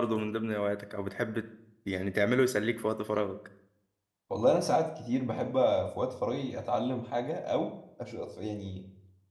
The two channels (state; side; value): identical; both; correlation 1.00